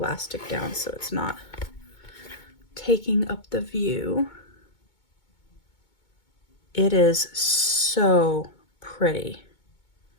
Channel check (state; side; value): late; right; 2.2 ms